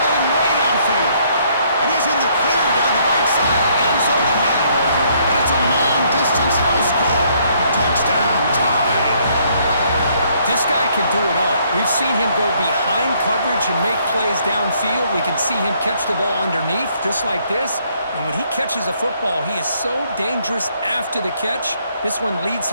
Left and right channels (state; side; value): inverted; both; correlation -0.67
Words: way downfield. And he's in the clear down the right side, end zone ahead. And it's a long-distance house call. Touchdown, tied. This guy can do it all. We've seen him go behind coverage and make plays downfield. We can see him catch the ball underneath, just like this. And when he catches a football, he is so dangerous after the catch. This one leads